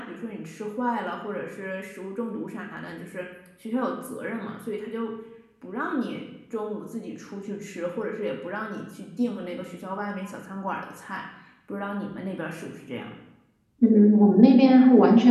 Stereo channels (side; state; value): both; identical; correlation 1.00